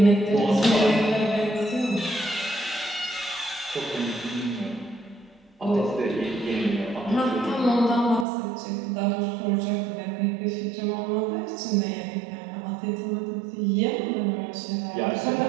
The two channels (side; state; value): left; drops out; at 8.2 s